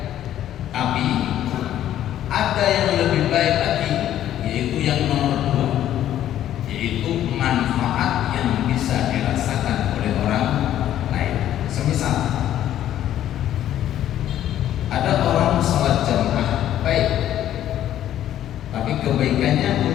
tapi ada yang lebih baik lagi, yaitu yang nomor dua, yaitu manfaat yang bisa dirasakan oleh orang lain. Semisal ada orang sholat jamaah baik, tapi kebaikannya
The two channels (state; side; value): quieter; right; 11.8 dB